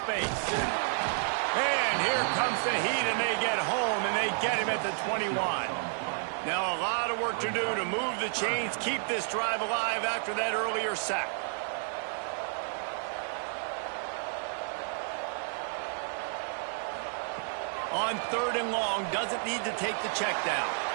And here comes the heat, and they get home, and they get him at the 21. Now a lot of work to do to move the chains, keep this drive alive after that earlier sack. On 3rd and long, doesn't need to take the check down.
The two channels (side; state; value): left; silent; 57 dB below the other